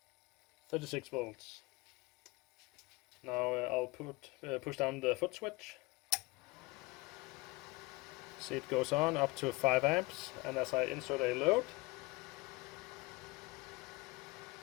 36 volts. Now I'll push down the foot switch. See, it goes on up to 5 amps, and as I insert a load,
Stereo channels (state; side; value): quieter; right; 24.0 dB